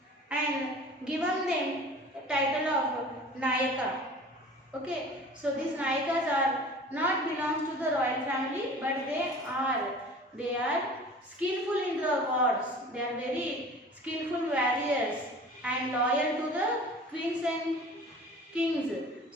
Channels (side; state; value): both; normal; correlation 0.43